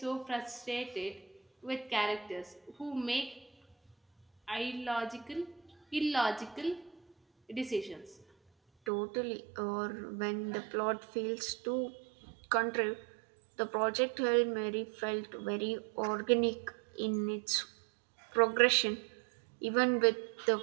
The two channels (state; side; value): drops out; left; at 8.9 s